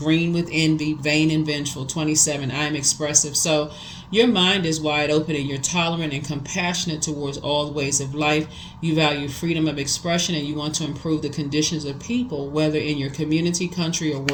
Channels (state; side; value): identical; both; correlation 1.00